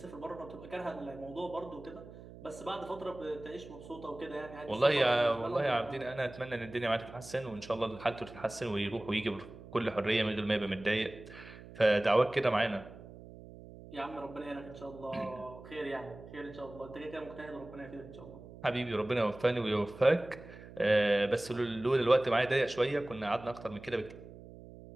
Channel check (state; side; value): noise; right; hum, 16 dB below the sound